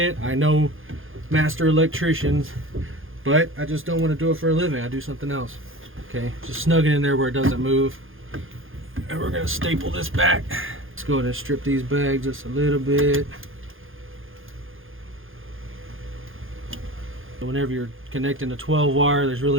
I know master electricians, but I just don't want to do it for a living. I do something else. Okay, just snug it in there where it doesn't move. And we're going to staple this back. Let's go ahead and strip these bags just a little bit. Whenever you're connecting a 12 wire, there's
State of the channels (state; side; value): late; left; 0.59 ms